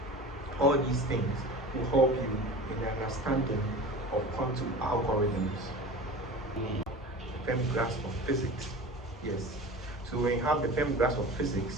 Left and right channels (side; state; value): both; normal; correlation 0.35